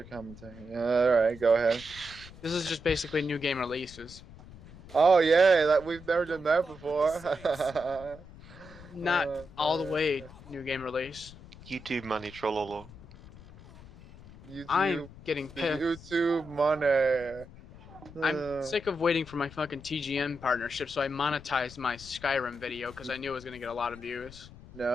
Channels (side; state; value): left; noise; rumble, 18 dB below the sound